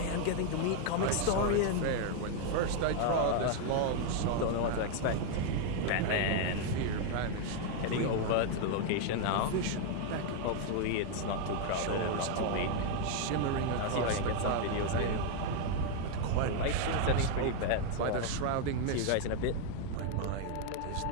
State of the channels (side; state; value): both; different; correlation 0.00